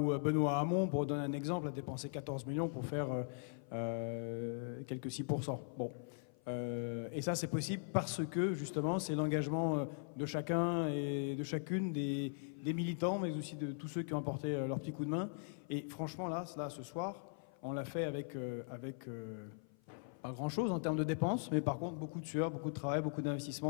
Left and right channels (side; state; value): right; silent; 51 dB below the other